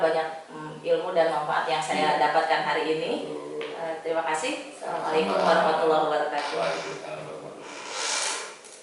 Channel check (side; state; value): both; identical; correlation 1.00